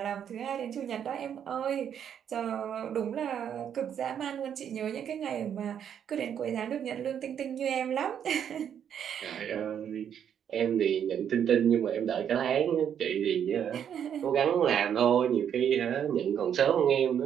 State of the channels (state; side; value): quieter; left; 8.8 dB